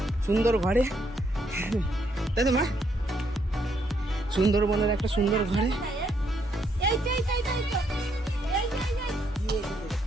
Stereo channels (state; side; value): normal; both; correlation 0.73